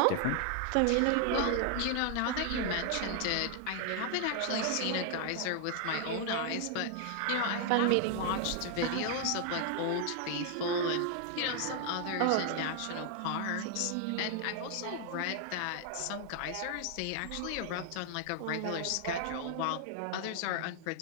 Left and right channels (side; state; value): both; different; correlation 0.00